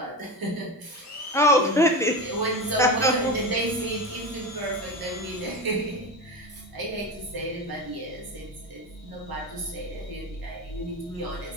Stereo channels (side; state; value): both; normal; correlation 0.23